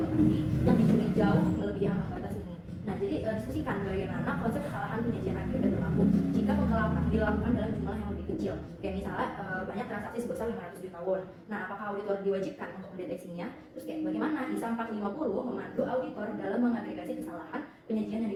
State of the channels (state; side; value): identical; both; correlation 1.00